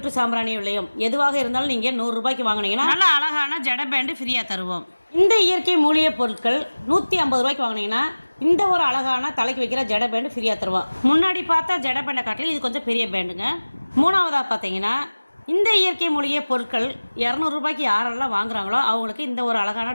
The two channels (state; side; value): inverted; both; correlation -1.00